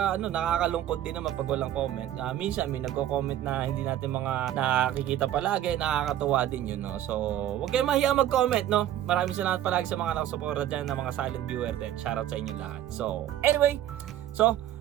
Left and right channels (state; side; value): quieter; left; 12.0 dB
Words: din naman pag walang comment. Minsan may nagko-comment na hindi natin mga nakikita palagi, nakakatuwa din yun, no. So, huwag kayong mahiya mag-comment, no. Maraming salamat palagi sa mga nakasuporta dyan na mga silent viewer din. Shoutout sa inyo lahat. So, anyway,